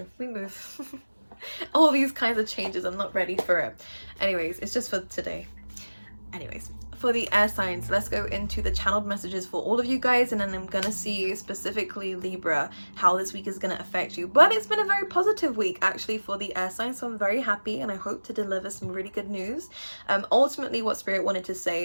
we move. All these kinds of changes, I'm not ready for it. Anyways, it's just for today. Anyways, for the air signs, let's go into the channeled messages for all of you guys, and then I'm gonna see specifically Libra how this week is gonna affect you. But it's been a very positive week actually for the air signs, so I'm very happy and I hope to deliver some really good news. Ultimately what Spirit wanted to say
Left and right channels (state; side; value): inverted; both; correlation -1.00